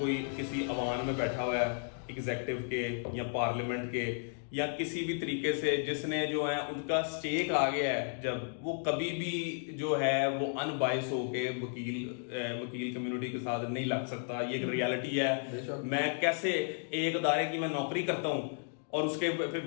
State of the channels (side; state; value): right; silent; 55 dB below the other